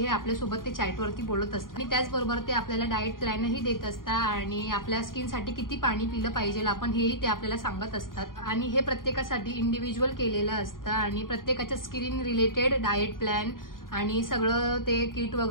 आपल्यासोबत ते चॅटवरती बोलत असतात आणि त्याचबरोबर ते आपल्याला डाएट प्लॅनही देत असतात आणि आपल्या स्किनसाठी किती पाणी पिलं पाहिजे आपण हेही ते आपल्याला सांगत असतात। आणि हे प्रत्येकासाठी इंडिव्हिज्युअल केलेलं असतं आणि प्रत्येकाच्या स्किन रिलेटेड डाएट प्लॅन आणि सगळं ते किट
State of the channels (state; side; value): late; right; 0.91 ms